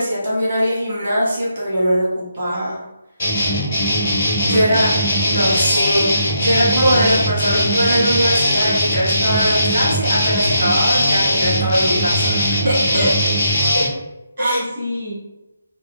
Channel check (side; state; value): both; inverted; correlation -0.76